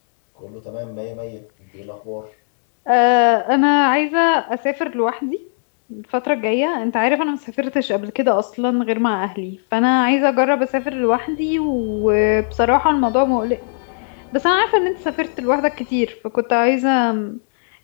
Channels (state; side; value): silent; right; digital silence